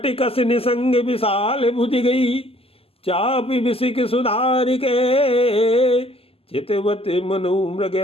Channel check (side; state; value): right; late; 0.28 ms